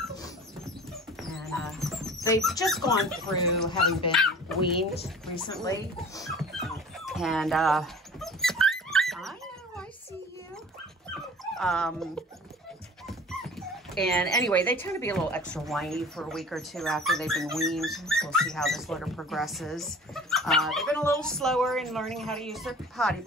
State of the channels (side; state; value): both; normal; correlation 0.43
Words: And they've just gone through having been weaned recently. And I know, I see you. And anyway, they tend to be a little extra whiny for a week or 2 after they've been weaned. We'll see how this litter progresses. They've been a little slower in learning how to use their potty